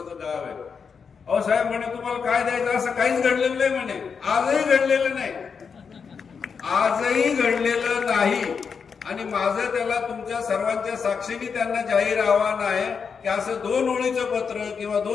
गाव आहे. अहो साहेब म्हणे तुम्हाला काय द्यायचं, असं काहीच घडलेलं नाही म्हणे. आजही घडलेलं नाही. आणि माझं त्याला तुमच्या सर्वांच्या साक्षीने त्यांना जाहीर आव्हान आहे की असं 2 ओळीचं पत्र किंवा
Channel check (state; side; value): quieter; right; 6.0 dB